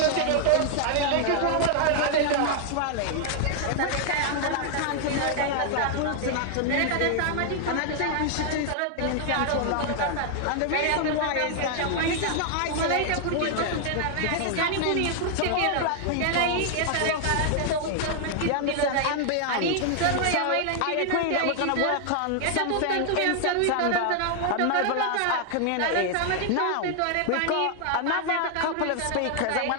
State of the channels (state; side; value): different; both; correlation 0.00